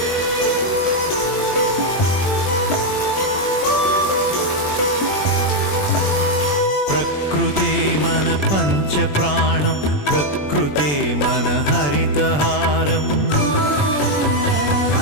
ప్రకృతే మన పంచ ప్రాణం ప్రకృతే మన హరితహారం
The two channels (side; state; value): right; late; 20 ms